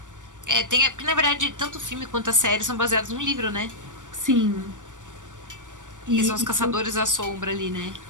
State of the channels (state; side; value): late; left; 0.87 ms